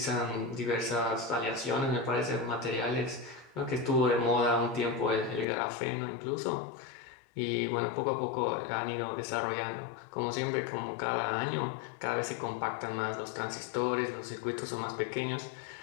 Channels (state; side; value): drops out; right; at 5.5 s